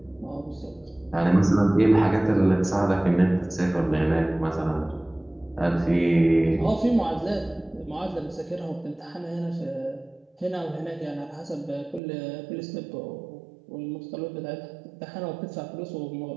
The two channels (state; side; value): drops out; left; at 12.0 s